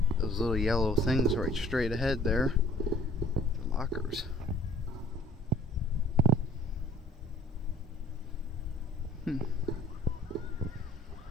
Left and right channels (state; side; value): normal; both; correlation 0.53